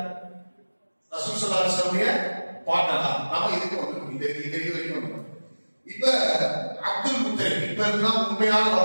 ரசூல் ஸல்லல்லாஹு அலைஹி வஸல்லம் பாட்டனா. நாம இதுக்கு வந்துட்டோம், இந்த இது வரைக்கும். இப்ப அப்துல் முத்தலிப் இப்ப இருந்தால் உண்மையான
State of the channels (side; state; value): both; inverted; correlation -1.00